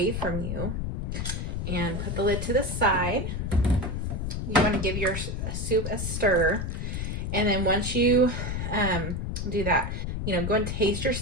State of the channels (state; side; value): noise; left; rumble, 3 dB below the sound